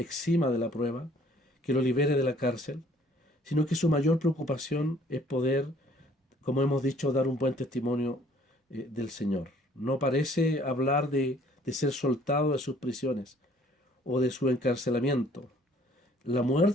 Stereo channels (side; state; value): both; normal; correlation 0.58